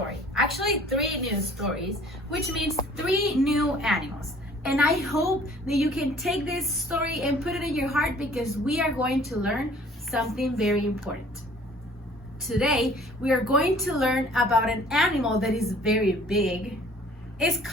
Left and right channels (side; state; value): both; normal; correlation 0.53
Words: actually 3 new stories, which means 3 new animals. And I hope that you can take this story and put it in your heart because we are going to learn something very important. Today, we are going to learn about an animal that is very big, is